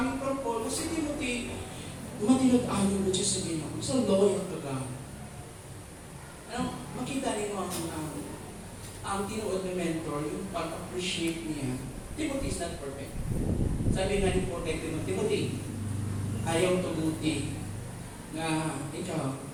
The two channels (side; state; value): both; identical; correlation 1.00